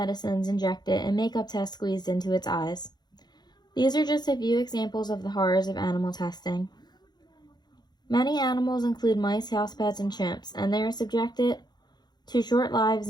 injected and makeup tests squeezed into its eyes. These are just a few examples of the horrors of animal testing. Many animals include mice, house pets, and chimps, and they are subjected to short lives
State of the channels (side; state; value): right; late; 0.20 ms